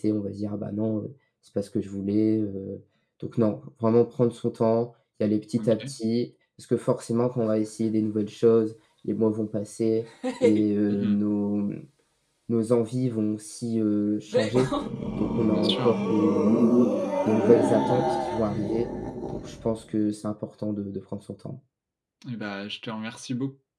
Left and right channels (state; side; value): identical; both; correlation 1.00